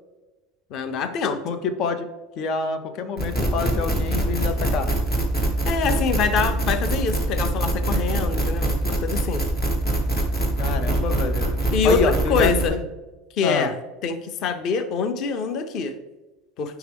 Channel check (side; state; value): both; normal; correlation 0.51